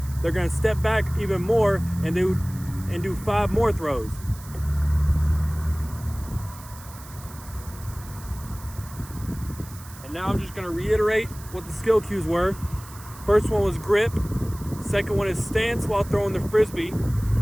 they're gonna step back even more and do 5 more throws. And now I'm just gonna reiterate what the skill cues were. First one was grip. Second one is stance while throwing the Frisbee.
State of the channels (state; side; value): noise; right; hiss, 18 dB below the sound